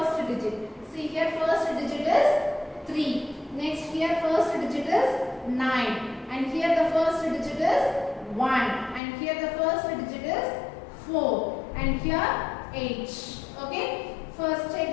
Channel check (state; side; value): drops out; right; at 9.0 s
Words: digit. See here, first digit is 3. Next here, first digit is 9. And here the first digit is 1. And here the first digit is 4. And here 8. Okay, first